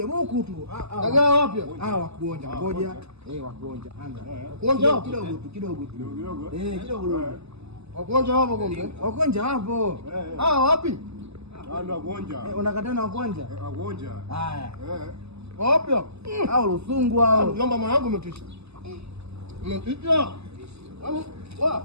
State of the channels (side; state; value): left; late; 0.79 ms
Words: buku tu. Dagaa wapi? Wakuonja. Ngoja. Wakuonja. Anga. Kuonja kidogo. Kidogo. Wakuonja hapo kombe. Wakuonja hapo. Wapi? Ndio wakuonja. Unakataa na wakuonja? Wakuonja. Haya. Wapi? Hao Lusungu hao. Mjomba mwanangu umetisha. Umetisha.